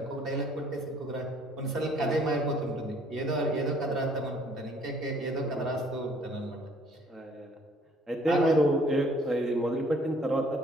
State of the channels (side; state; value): both; normal; correlation 0.60